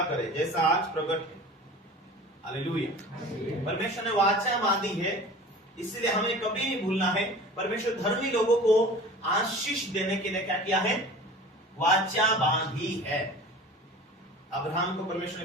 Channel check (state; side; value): normal; both; correlation 0.40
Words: करे, जैसा आज प्रकट है। हालेलुया। परमेश्वर ने वाचा बांधी है, इसलिए हमें कभी नहीं भूलना है। परमेश्वर धर्मी लोगों को आशीष देने के लिए क्या किया है? वाचा बांधी है। अब्राहम को परमेश्वर